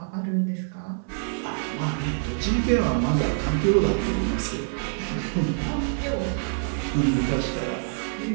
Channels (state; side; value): silent; left; 58 dB below the other